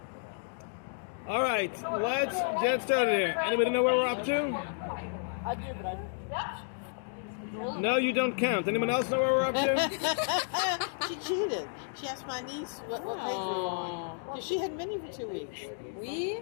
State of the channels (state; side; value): silent; right; digital silence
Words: All right. Let's get started here. Anybody know where we're up to? No, you don't count. Anyone else know where we're up to? She cheated. She asked my niece what page we were on. Because she had many for 2 weeks. We're